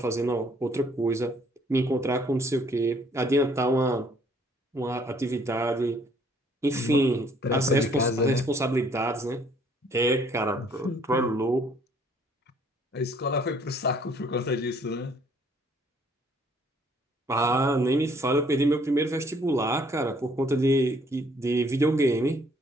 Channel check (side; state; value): both; normal; correlation 0.62